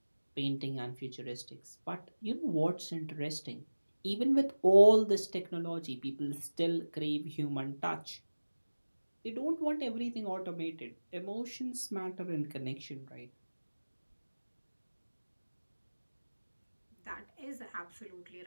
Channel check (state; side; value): inverted; both; correlation -1.00